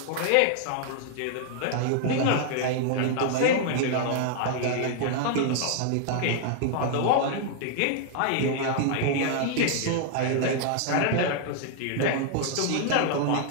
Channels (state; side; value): different; both; correlation -0.01